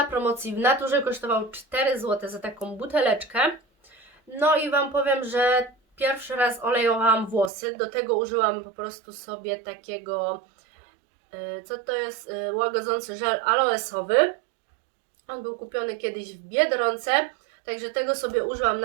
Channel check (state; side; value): drops out; left; at 7.5 s